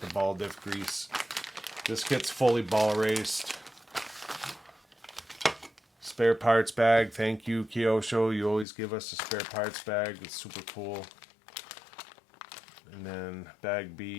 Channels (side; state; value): right; drops out; at 8.7 s